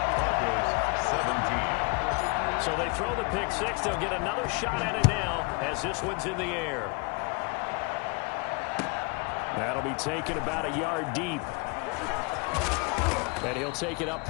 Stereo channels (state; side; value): quieter; right; 32.2 dB